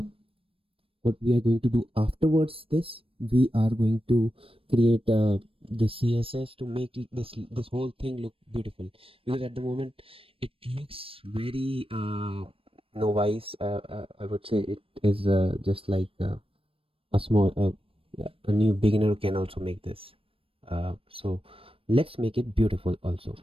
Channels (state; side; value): late; left; 0.27 ms